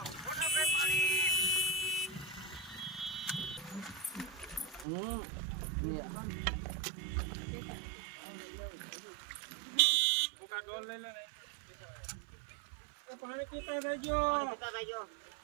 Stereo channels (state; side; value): drops out; left; at 4.9 s